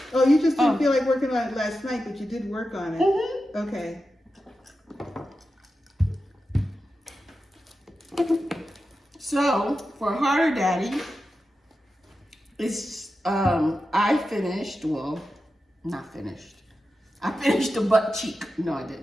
Oh, you just didn't feel like working on it last night, but you did work on it. Mm-hmm. Okay. So for Harder Daddy, it's I finished. Well, not finished. I finished the butt cheek. No, I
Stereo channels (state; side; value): normal; both; correlation 0.91